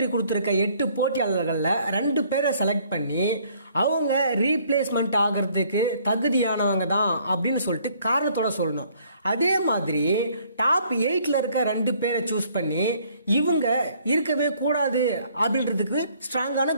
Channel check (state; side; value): inverted; both; correlation -0.62